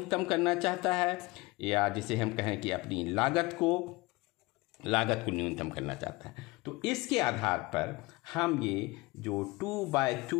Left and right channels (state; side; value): quieter; right; 22.5 dB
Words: करना चाहता है, या जिसे हम कहें कि अपनी लागत को न्यूनतम करना चाहता है। तो इसके आधार पर हम ये जो